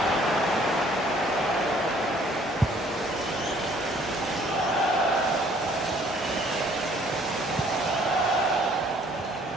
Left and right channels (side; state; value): both; normal; correlation 0.59